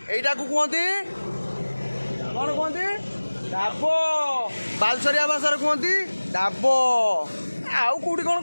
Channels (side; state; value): both; inverted; correlation -1.00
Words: एटा को कहते कौन कहते डाबो, बालसरिया भाषा कहते डाबो। आउ कोठी कौन